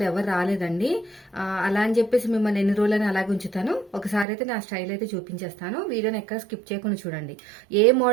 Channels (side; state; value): left; drops out; at 4.2 s